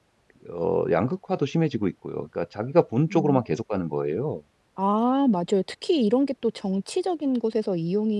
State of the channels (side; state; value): both; identical; correlation 1.00